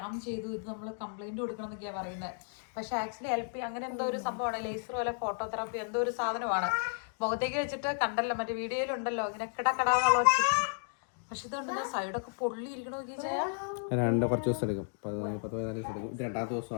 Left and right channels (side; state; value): right; silent; digital silence